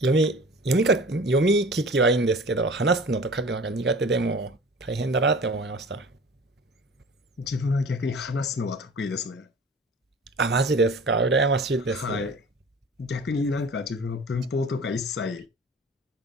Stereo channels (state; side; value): normal; both; correlation 0.41